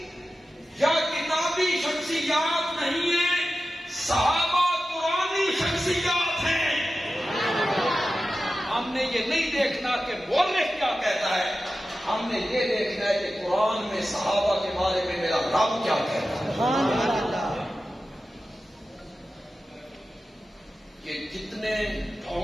یا کتابی شخصیات نہیں ہیں, صحابہ قرآنی شخصیات ہیں. ہم نے یہ نہیں دیکھنا کہ مورخ کیا کہتا ہے, ہم نے یہ دیکھنا ہے کہ قرآن میں صحابہ کے بارے میں میرا رب کیا کہتا ہے. یہ جتنے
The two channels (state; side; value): normal; both; correlation 0.93